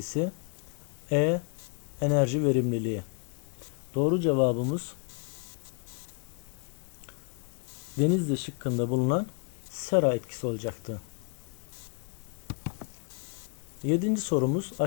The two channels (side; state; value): right; quieter; 35.2 dB